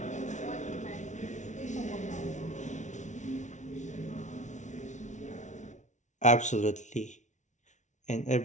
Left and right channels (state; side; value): late; right; 0.35 ms